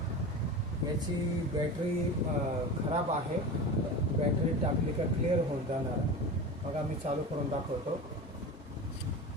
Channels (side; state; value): both; normal; correlation 0.29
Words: याची बॅटरी खराब आहे. बॅटरी टाकली का क्लिअर होऊन जाणार. बघा, मी चालू करून दाखवतो.